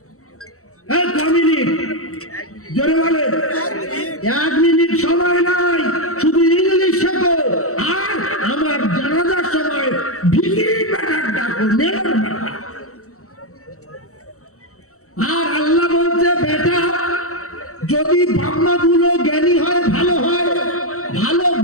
1 মিনিট জোরে বলে, 1 মিনিট সময় নাই, শুধু ইংলিশ শেখো। আর আমার জানাজার সময় ভিখিরি বেটার ডাকো, নেওয়ার বেটা। আর আল্লাহ বলছে বেটা যদি বাপমাগুলো জ্ঞানী হয়, ভালো হয়, ভালো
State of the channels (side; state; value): right; late; 0.64 ms